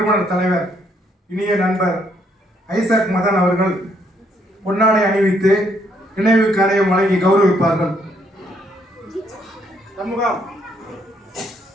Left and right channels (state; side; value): normal; both; correlation 0.71